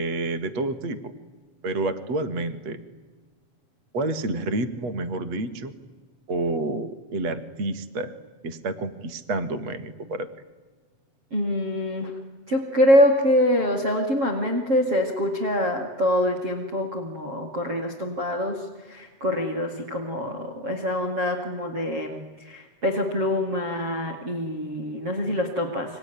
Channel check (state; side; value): late; left; 7.4 ms